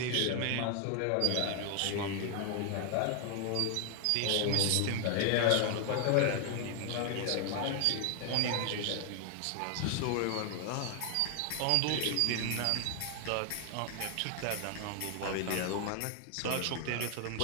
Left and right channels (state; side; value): different; both; correlation 0.00